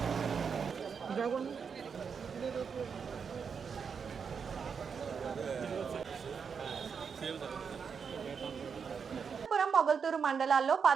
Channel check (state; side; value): quieter; left; 6.2 dB